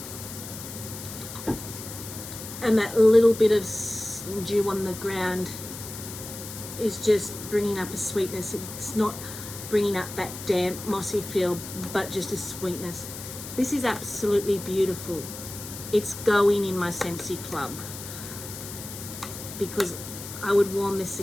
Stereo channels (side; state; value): left; noise; hiss, 11 dB below the sound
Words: and that little bit of dew on the ground is just bringing up a sweetness. It's not bringing up that damp mossy feel, but just a sweetness. This is absolutely beautiful. It's going in my Scentsy club because I would warm this